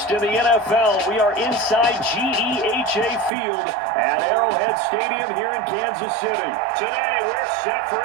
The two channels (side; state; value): left; drops out; at 3.3 s